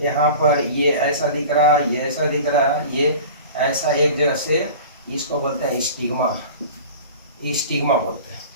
यहाँ पर ये ऐसा दिख रहा है, ये ऐसा दिख रहा है, ये ऐसा एक जगह से, इसको बोलते हैं स्टिग्मा बोलते हैं।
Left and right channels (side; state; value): both; inverted; correlation -0.38